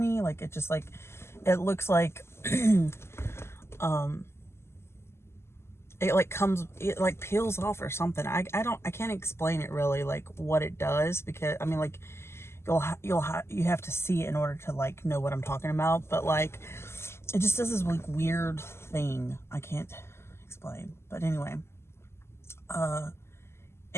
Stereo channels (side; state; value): right; late; 0.12 ms